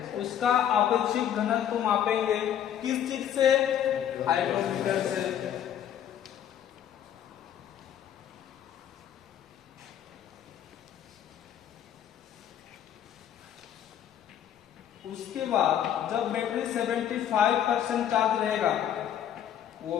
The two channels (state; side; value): quieter; right; 10.0 dB